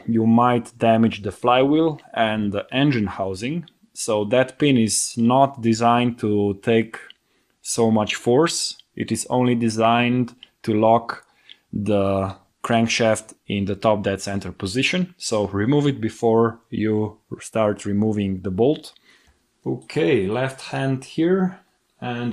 might damage the flywheel and the engine housing. So that pin is not designed to take so much force. It is only designed to lock the crankshaft in the top dead center position. So remove it before you start removing the bolt. Okay, left hand here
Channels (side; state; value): both; identical; correlation 1.00